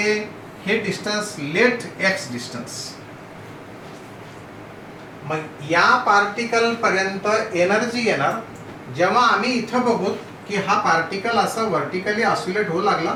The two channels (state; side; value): identical; both; correlation 1.00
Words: distance late x distance. मग या पार्टिकल पर्यंत एनर्जी येणार जेव्हा आम्ही इथं बघू की हा पार्टिकल असा व्हर्टिकली ऑसिलेट होऊ लागला.